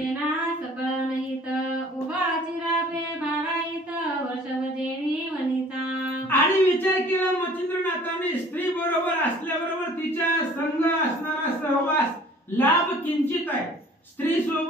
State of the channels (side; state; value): both; normal; correlation 0.51